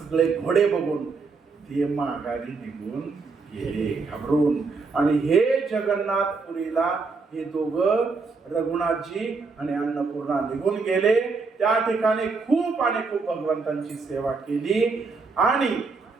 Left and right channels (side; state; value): left; quieter; 4.4 dB